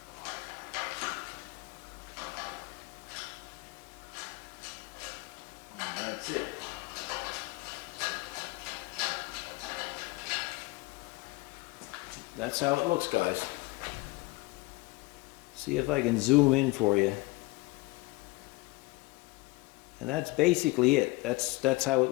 And that's it. That's how it looks, guys. See if I can zoom in for you. And that's basically it. That's how it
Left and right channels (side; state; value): right; quieter; 23.0 dB